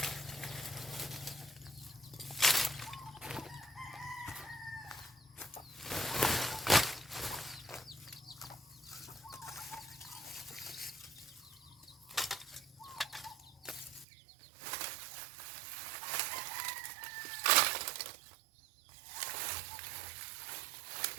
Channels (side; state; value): left; drops out; at 14.1 s